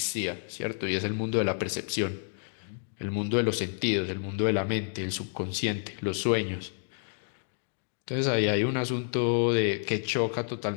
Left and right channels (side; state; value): right; silent; digital silence